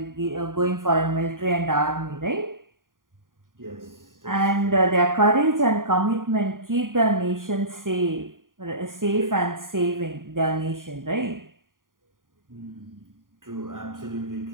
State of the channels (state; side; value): late; left; 0.90 ms